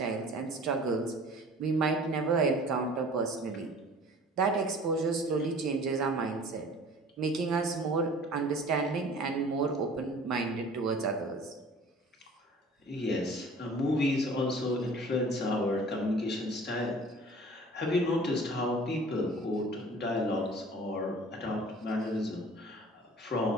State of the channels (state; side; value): normal; both; correlation 0.46